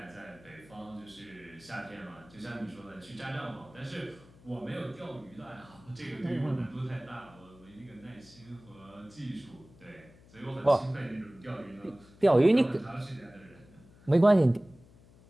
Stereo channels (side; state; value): left; noise; hum, 24 dB below the sound